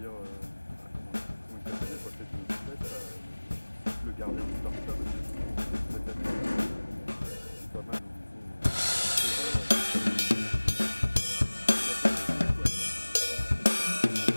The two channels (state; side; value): inverted; both; correlation -1.00